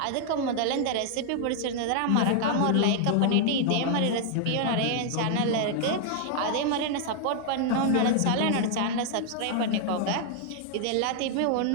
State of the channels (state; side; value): different; both; correlation 0.00